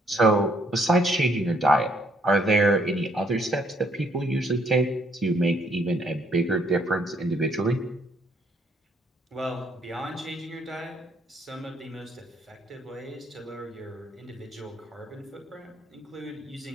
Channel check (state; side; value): normal; both; correlation 0.69